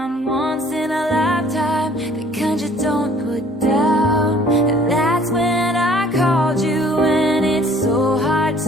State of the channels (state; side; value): normal; both; correlation 0.55